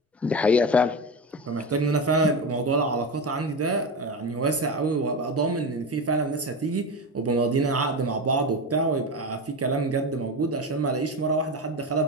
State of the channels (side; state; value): both; normal; correlation 0.21